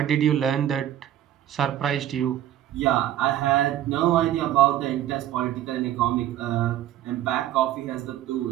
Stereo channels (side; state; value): left; quieter; 12.2 dB